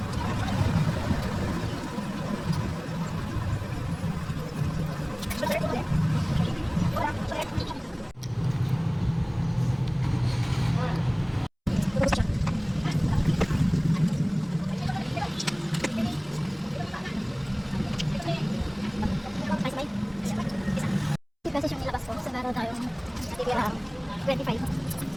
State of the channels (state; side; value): identical; both; correlation 1.00